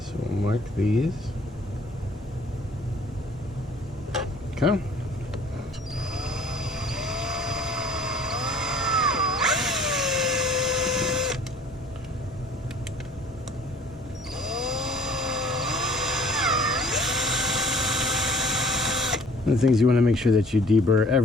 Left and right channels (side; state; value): both; normal; correlation 0.53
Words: we'll mark these. Okay. One of the things you want to make sure that you deburr